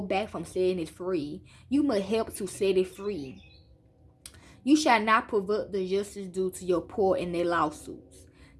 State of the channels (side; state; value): both; identical; correlation 1.00